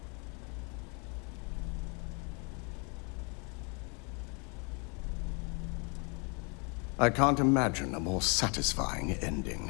I can't imagine a more satisfying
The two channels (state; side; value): quieter; right; 33.7 dB